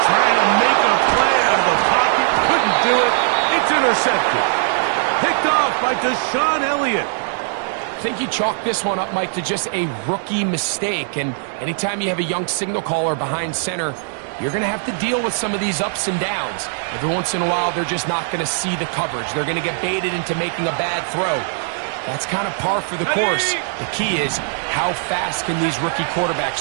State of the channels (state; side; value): silent; left; digital silence